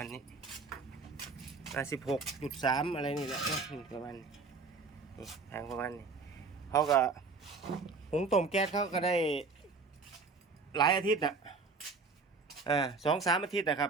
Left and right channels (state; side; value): quieter; left; 4.3 dB